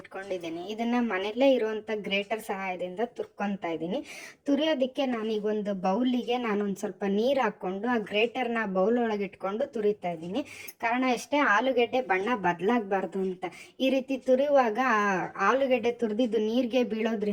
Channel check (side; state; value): both; identical; correlation 1.00